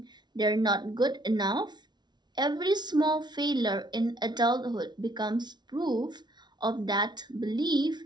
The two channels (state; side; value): late; left; 0.20 ms